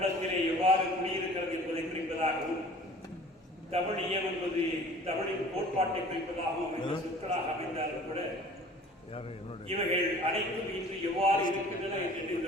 எவ்வாறு குடியிருக்கிறது என்பதை குறிப்பதாகவும், தமிழியம் என்பது தமிழின் கோட்பாட்டை குறிப்பதாகவும் அமைந்த சொற்களாக அமைந்தாலும் கூட இவைகள் அனைத்தும் இன்று எவ்வாறு இருக்கின்றன என்கின்ற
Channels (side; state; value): both; normal; correlation 0.47